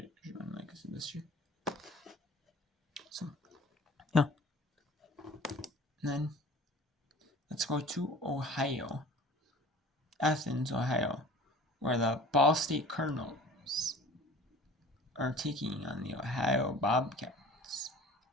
like I said, this year. So, yeah. And then, let's go to Ohio. Athens, Ohio, where the Ball State Cardinals are taking on the Ohio Bobcats.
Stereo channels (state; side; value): normal; both; correlation 0.45